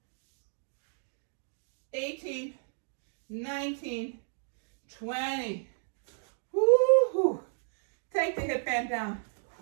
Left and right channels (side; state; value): left; silent; digital silence